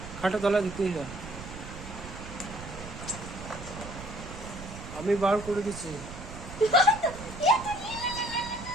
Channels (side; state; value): right; noise; rumble, 12 dB below the sound